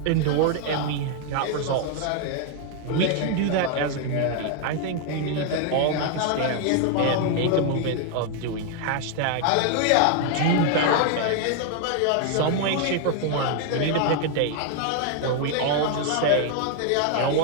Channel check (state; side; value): different; both; correlation 0.00